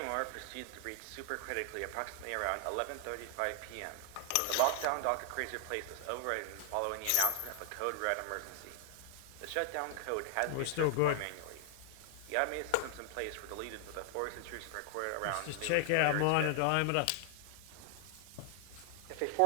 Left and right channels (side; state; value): both; different; correlation 0.00